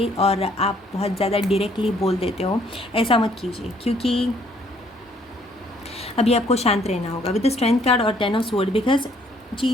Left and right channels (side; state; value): both; normal; correlation 0.64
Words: और आप बहुत ज़्यादा डायरेक्टली बोल देते हो। ऐसा मत कीजिए, क्योंकि अभी आपको शांत रहना होगा विद द स्ट्रेंथ कार्ड और 10 ऑफ स्वॉर्ड, बिकॉज